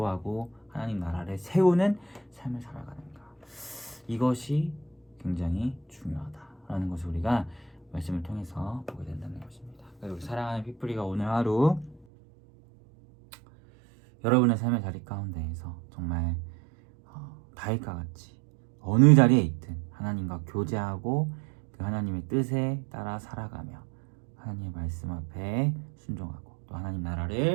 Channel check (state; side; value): drops out; left; at 12.0 s